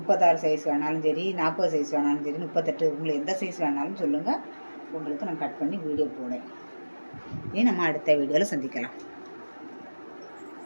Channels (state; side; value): inverted; both; correlation -1.00